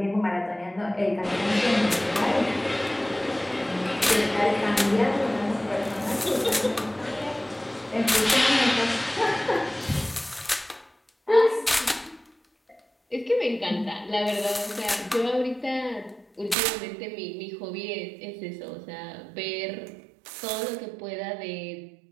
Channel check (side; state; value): left; drops out; at 16.6 s